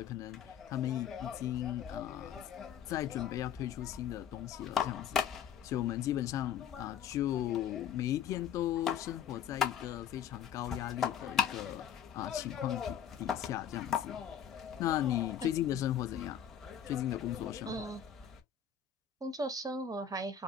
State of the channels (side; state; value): right; quieter; 8.8 dB